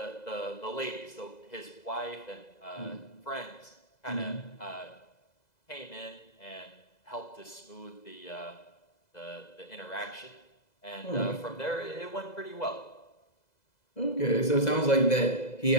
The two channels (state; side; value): late; right; 2.0 ms